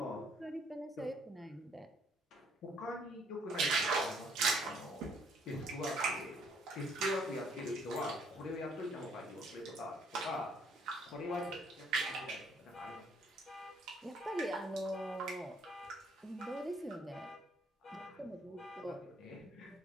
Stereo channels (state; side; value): normal; both; correlation 0.64